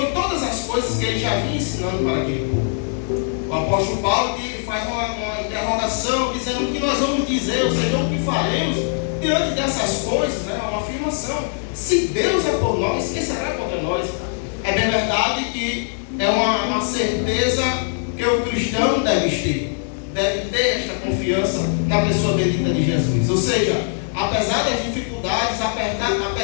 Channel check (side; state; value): right; silent; digital silence